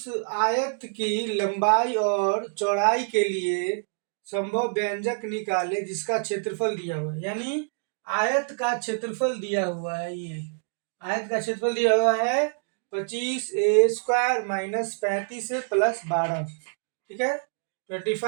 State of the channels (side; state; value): left; silent; digital silence